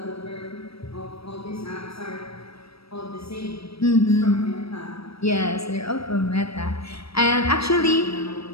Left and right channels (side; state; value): right; late; 0.77 ms